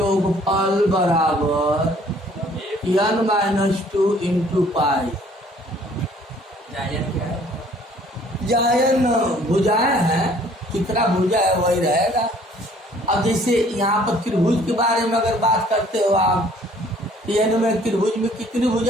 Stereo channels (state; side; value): normal; both; correlation 0.57